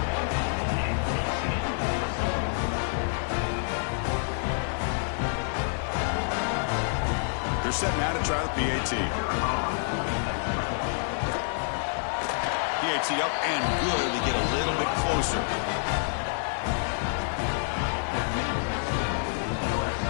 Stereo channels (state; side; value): silent; right; 59 dB below the other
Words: They're set now to try the PAT. PAT up and good to get a little bit closer.